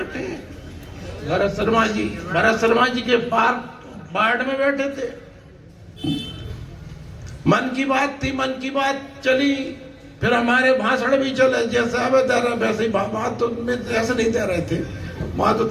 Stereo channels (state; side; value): identical; both; correlation 1.00